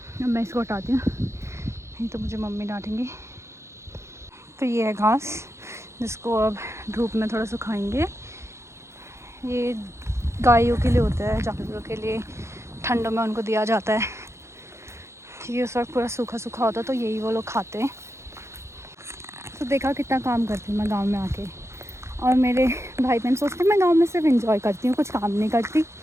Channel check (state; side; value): late; left; 0.13 ms